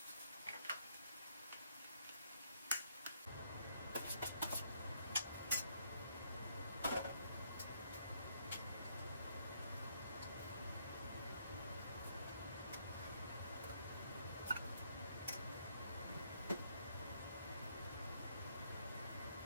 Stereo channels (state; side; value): inverted; both; correlation -0.71